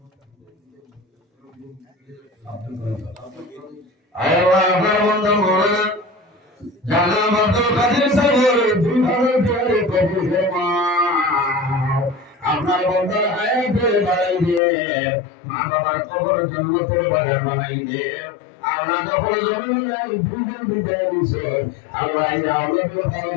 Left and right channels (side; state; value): right; drops out; at 14.6 s